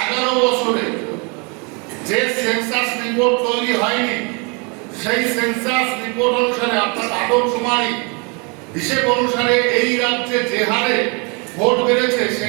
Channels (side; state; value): left; quieter; 32.6 dB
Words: 11 বছরে যে সেন্সাস রিপোর্ট তৈরি হয়নি, সেই সেন্সাস রিপোর্ট অনুসারে, অর্থাৎ আদমশুমারি হিসেব অনুসারে এই রাজ্যে যে হারে ভোট বেড়েছে,